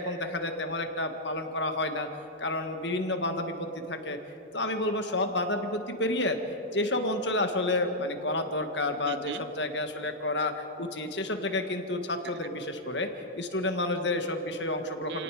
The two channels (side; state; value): both; normal; correlation -0.06